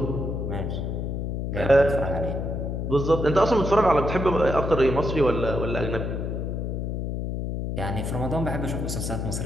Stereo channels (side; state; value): left; noise; hum, 2 dB below the sound